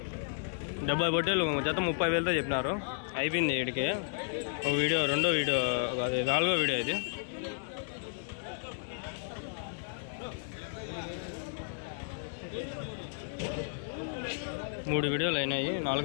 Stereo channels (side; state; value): right; silent; 56 dB below the other